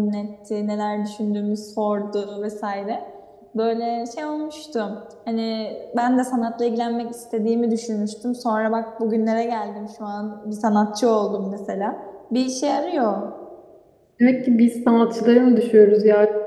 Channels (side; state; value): both; identical; correlation 1.00